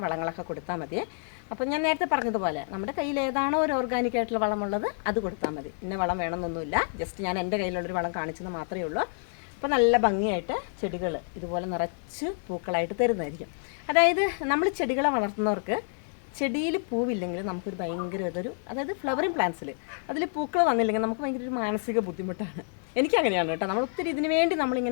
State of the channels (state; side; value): silent; right; 59 dB below the other